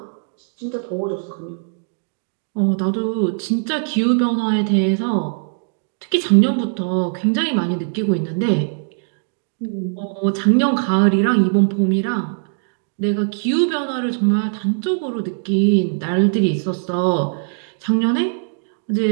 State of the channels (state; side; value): silent; left; digital silence